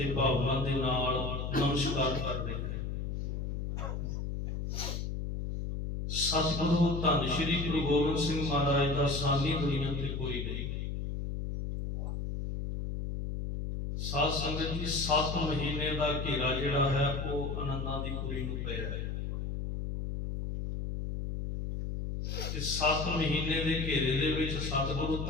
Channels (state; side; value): noise; left; hum, 3 dB below the sound